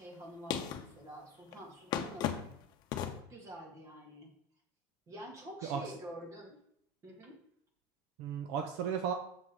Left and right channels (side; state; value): both; normal; correlation 0.22